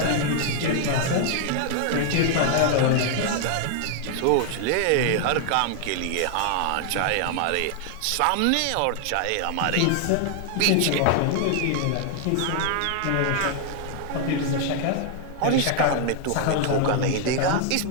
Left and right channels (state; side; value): different; both; correlation 0.00